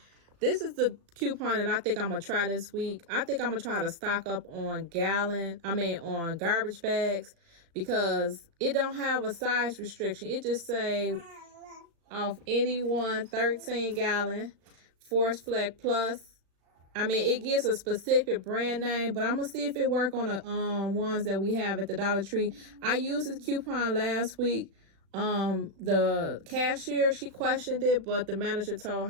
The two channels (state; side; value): late; left; 36 ms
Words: This is the coupon that I think I'm going to try this week. I think I'm going to try to stock up on on garbage bags because it don't have a size restriction. It just say off any one 13-gallon Force Flex Plus. It gives a specific brand name, but I'm going to see if it work on the ones that we have at the Dollar Tree. I used this coupon last week. The cashier, she questioned it, but the manager told